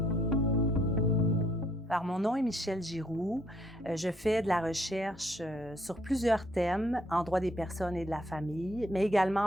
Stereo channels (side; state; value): both; normal; correlation 0.68